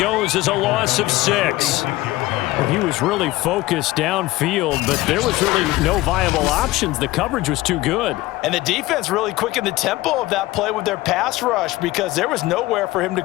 as a loss of 6. Well, he was really focused downfield, but there was really no viable options. The coverage was too good. And the defense really quickened the tempo of that play with their pass rush because there was nowhere for him to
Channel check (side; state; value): right; quieter; 18.4 dB